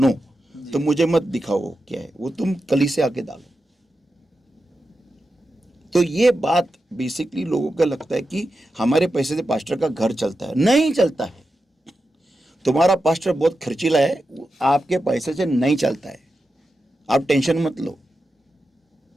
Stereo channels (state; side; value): normal; both; correlation 0.90